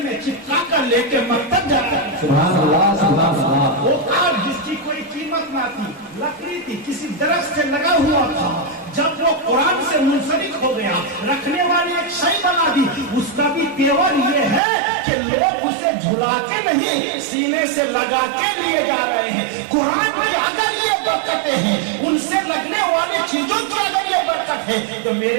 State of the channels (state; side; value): drops out; left; at 14.6 s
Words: میں چپکا کر لے کے مکتب جاتا ہے. سبحان اللہ سبحان اللہ. وہ کاٹ جس کی کوئی قیمت نہ تھی، لکڑی تھی، کسی درخت سے لگا ہوا تھا، جب وہ قرآن سے منسلک ہو گیا رکھنے والی ایک شے بنا دی. اس کا بھی تیور یہ ہے کہ لوگ اسے جھلا کے نہیں سینے سے لگا کے لیے جا رہے ہیں. قرآن کی اگر یہ برکتیں ہیں، ان سے لگنے والے چیزوں کی اگر یہ برکت ہے تو